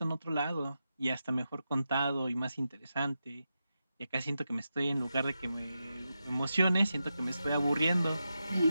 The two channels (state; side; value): inverted; both; correlation -0.89